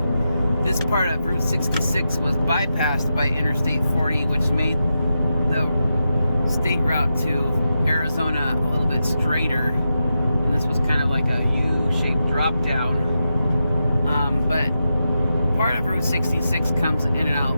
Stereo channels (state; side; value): inverted; both; correlation -0.88